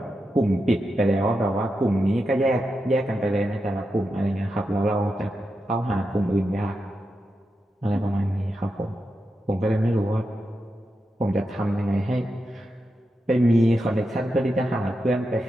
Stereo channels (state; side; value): normal; both; correlation 0.88